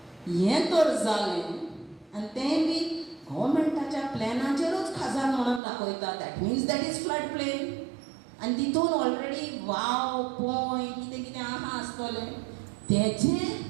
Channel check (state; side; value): drops out; left; at 5.6 s